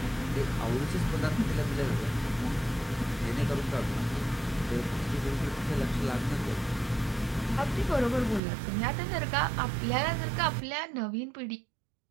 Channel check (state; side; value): drops out; left; at 8.4 s